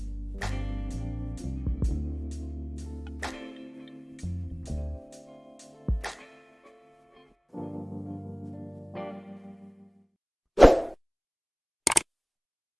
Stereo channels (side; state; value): both; identical; correlation 1.00